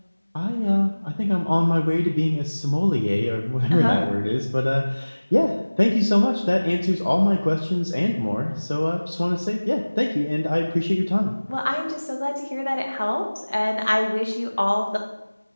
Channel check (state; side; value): inverted; both; correlation -1.00